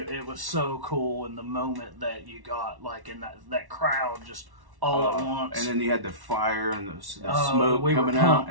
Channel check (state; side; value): late; left; 1.1 ms